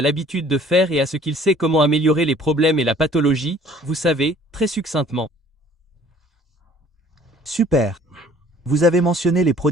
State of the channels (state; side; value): normal; both; correlation 0.54